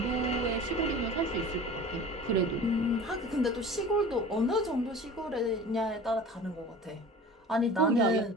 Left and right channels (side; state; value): both; normal; correlation 0.40